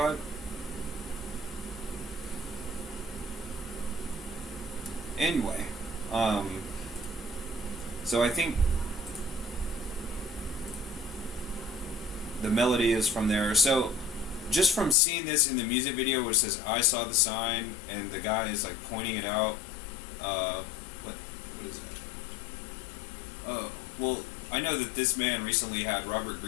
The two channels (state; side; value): drops out; right; at 15.0 s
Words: Anyway, so I think the melody is from there. So just from seeing this in the music video, which says "I saw the sign" and the guy is like pointing it out. What is that? Oh, well, I know that this man recently had Robert